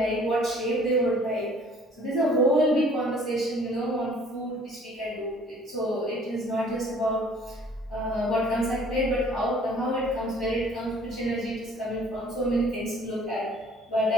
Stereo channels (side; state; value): both; normal; correlation 0.55